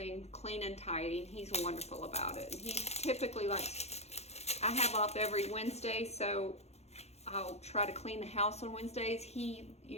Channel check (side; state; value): right; late; 0.31 ms